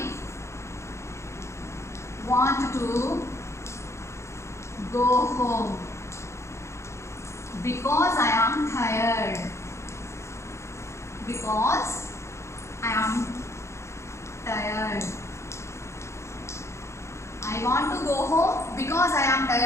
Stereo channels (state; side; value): late; right; 0.13 ms